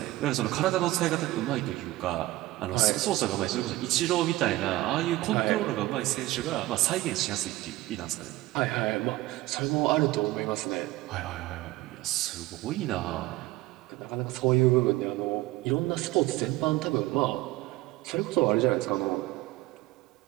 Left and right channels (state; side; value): quieter; left; 17.9 dB